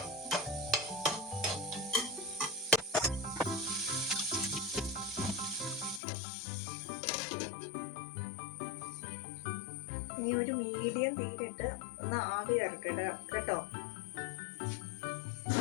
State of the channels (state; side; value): drops out; right; at 6.0 s